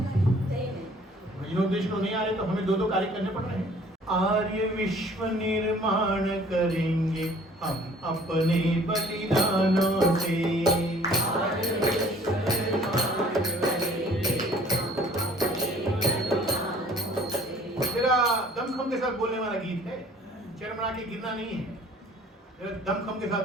भजनोपदेशक तो नहीं आ रहे, तो हमें दो कार्य करने पड़ रहे हैं। आर्य विश्व निर्माण करेंगे हम अपने बलिदानों से। तेरा दमखम के साथ बोलने वाला गीत है, चरमरा के गिरना नहीं है, तेरा दमखम के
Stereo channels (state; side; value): normal; both; correlation 0.54